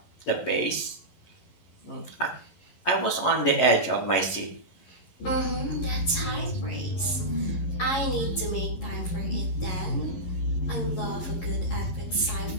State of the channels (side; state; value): right; late; 11 ms